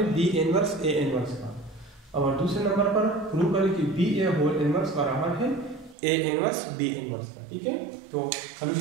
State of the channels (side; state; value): left; drops out; at 6.0 s